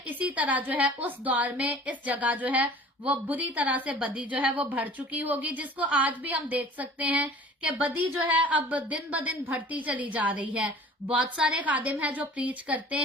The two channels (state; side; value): normal; both; correlation 0.46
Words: इसी तरह जो है उस दौर में इस जगह जो है वो बुरी तरह से बदी जो है वो भर चुकी होगी, जिसको आज भी हम देख सकते हैं कि बदी जो है अब दिन ब दिन बढ़ती चली जा रही है। बहुत सारे खादिम हैं जो प्रीच करते